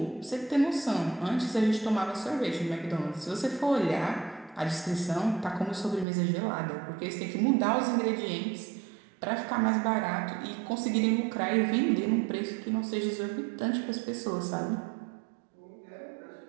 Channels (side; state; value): left; drops out; at 6.1 s